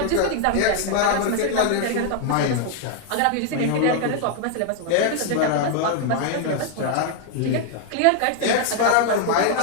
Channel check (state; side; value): different; both; correlation 0.00